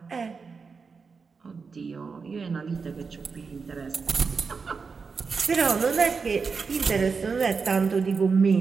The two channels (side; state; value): left; quieter; 5.1 dB